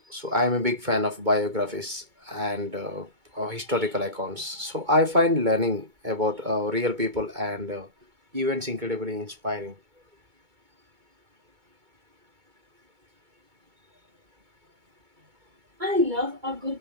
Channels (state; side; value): late; left; 2.2 ms